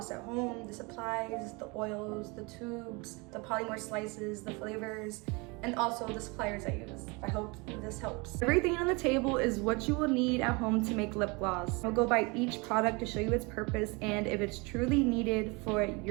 at home, the supplies, the oils, the tubes, the polymer slices, the flavors, and also the suppliers I use. I hope this helps. Everything on the table is what you will need at home to make lip gloss. I'll go by each product to show you its purpose and if it's truly needed for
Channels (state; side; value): quieter; left; 28.1 dB